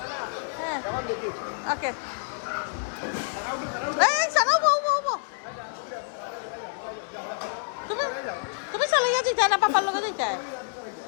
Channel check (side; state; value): right; silent; 60 dB below the other